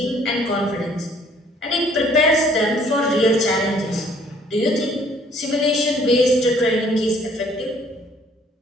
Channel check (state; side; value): normal; both; correlation 0.60